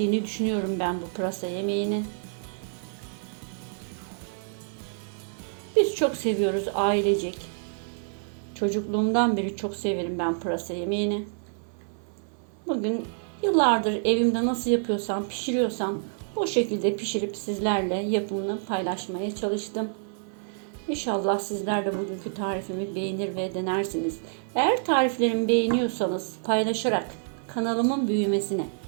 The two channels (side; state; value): left; silent; 58 dB below the other